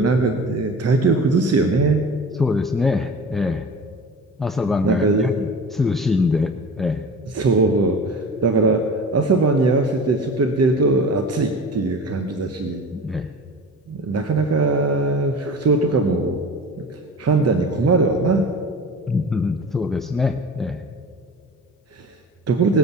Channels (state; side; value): normal; both; correlation 0.36